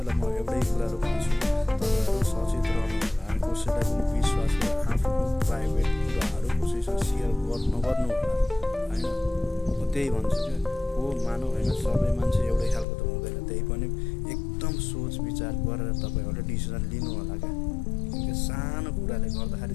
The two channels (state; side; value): drops out; right; at 12.9 s